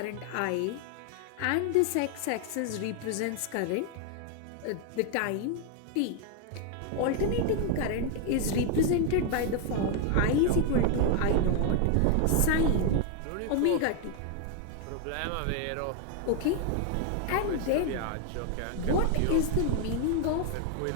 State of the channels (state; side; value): different; both; correlation 0.01